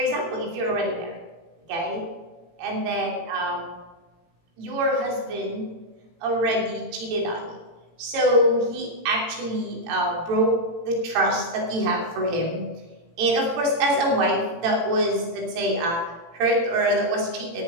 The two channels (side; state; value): left; late; 18 ms